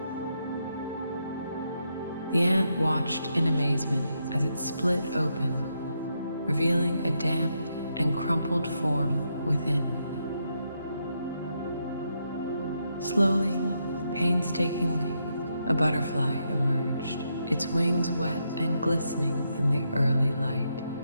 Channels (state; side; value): inverted; both; correlation -0.81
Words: The ant watched in amazement as it split open, revealing a damp and crumpled form within. Slowly, painstakingly, a butterfly emerged, its wings wet and glistening in the early light.